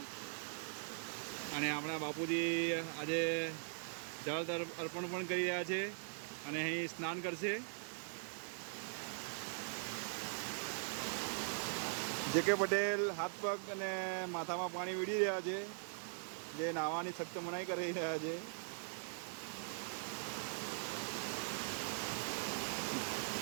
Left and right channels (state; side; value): silent; left; digital silence